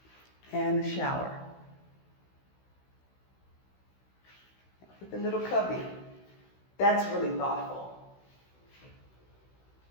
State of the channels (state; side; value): late; right; 16 ms